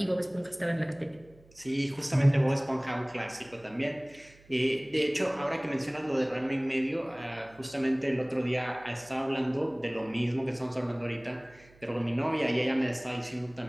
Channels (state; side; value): noise; right; hum, 27 dB below the sound